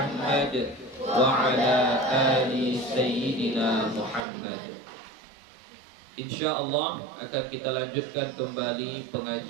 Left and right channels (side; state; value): left; drops out; at 4.2 s